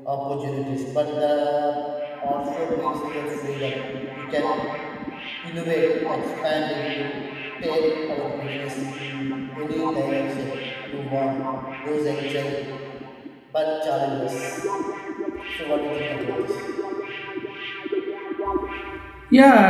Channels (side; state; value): both; identical; correlation 1.00